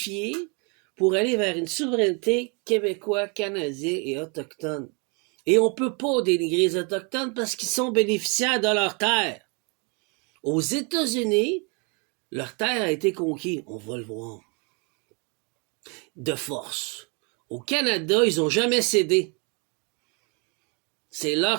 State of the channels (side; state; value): left; quieter; 33.5 dB